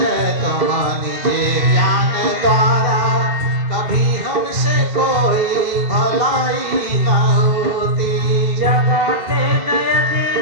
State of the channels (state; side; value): late; left; 2.6 ms